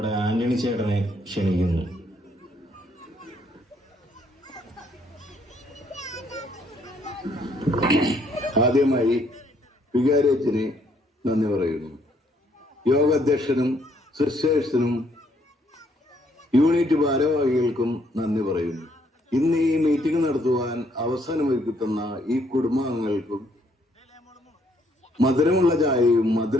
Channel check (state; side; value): normal; both; correlation 0.69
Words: ആന്റണി ചേട്ടനെ ക്ഷണിക്കുന്നു. ആദ്യമായി വികാരിയച്ഛന് നന്ദി പറയുന്നു. യോഗാധ്യക്ഷനും സിസ്റ്റേഴ്സിനും യൂണിറ്റ് ഭാരവാഹികൾക്കും നന്ദി പറയുന്നു. ഇന്ന് ഈ മീറ്റിംഗ് നടത്തുവാൻ അവസരമൊരുക്കി തന്ന ഈ കുടുംബാംഗങ്ങൾക്കും മധുരമുള്ള ചായയും